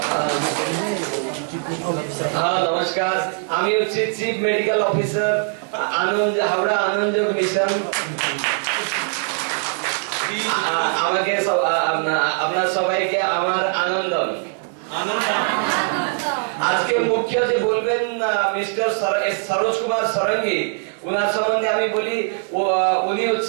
নমস্কার, আমি হচ্ছি চিফ মেডিকেল অফিসার আনন্দ হাওড়া আনন্দযোগ মিশন। আমাকে আপনার সবাইকে আমার আনন্দম। আজকে মুখ্য যে বলবেন মিস্টার সরোজ কুমার সরঙ্গী, ওনার সম্বন্ধে আমি বলি উনি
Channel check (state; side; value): silent; left; 56 dB below the other